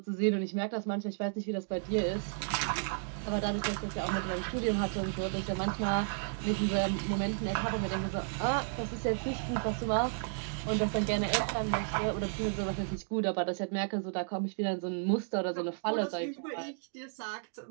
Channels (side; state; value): left; silent; digital silence